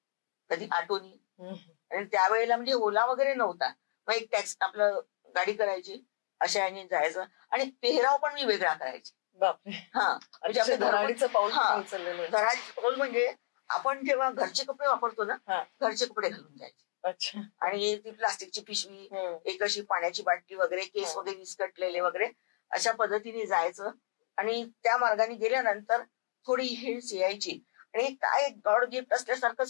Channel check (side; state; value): right; silent; digital silence